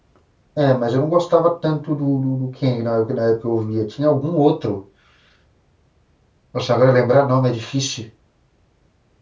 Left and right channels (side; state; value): both; identical; correlation 1.00